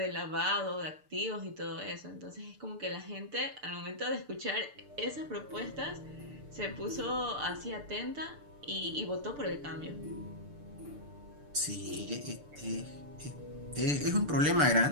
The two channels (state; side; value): late; left; 6.8 ms